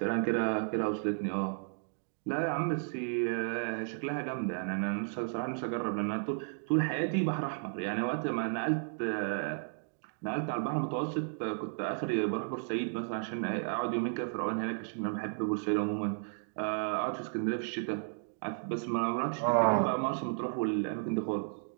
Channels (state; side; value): silent; left; digital silence